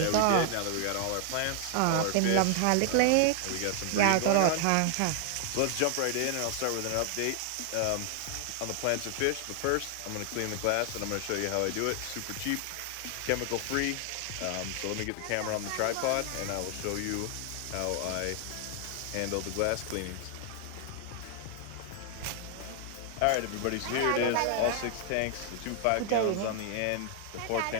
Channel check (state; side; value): different; both; correlation 0.00